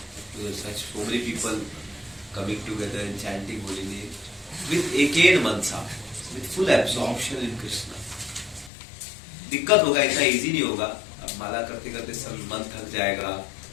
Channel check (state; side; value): drops out; right; at 8.7 s